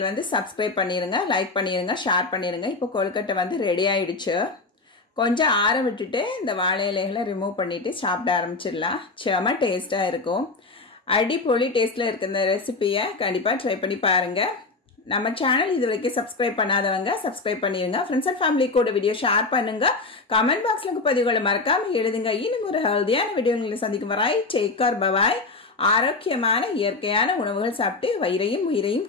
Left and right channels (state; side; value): quieter; right; 3.7 dB